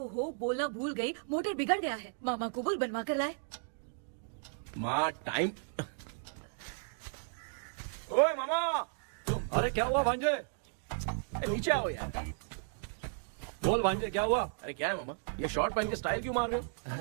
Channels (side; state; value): left; silent; digital silence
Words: बोलना भूल गई, मोटर बिगड़ गया है। मामा को बोल बनवा कर लाए। माँ टाइम। ओए मामा। अरे क्या हुआ भांजे? नीचे आओ यार। बोल भांजे क्या हुआ? अरे क्या है मामा, ये शॉर्ट पहन के स्टाइल क्यों मार रहे